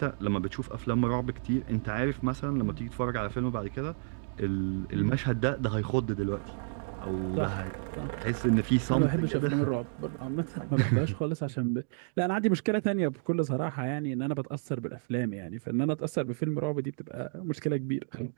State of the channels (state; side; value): silent; left; digital silence